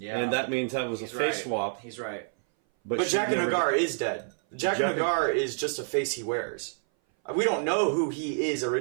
and that means that was He's a face right. swap. He's right. But she Jaqen never- H'ghar is dead. Jaqen H'ghar is just a face he wears. We don't know who he is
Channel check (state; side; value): silent; left; 58 dB below the other